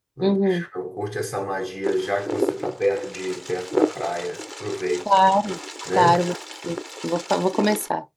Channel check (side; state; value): both; identical; correlation 1.00